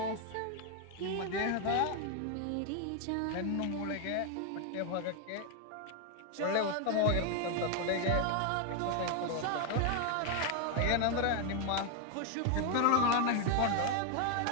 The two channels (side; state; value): both; different; correlation 0.01